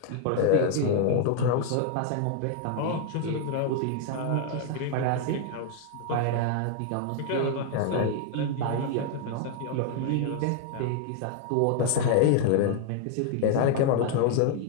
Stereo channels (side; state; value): both; different; correlation 0.00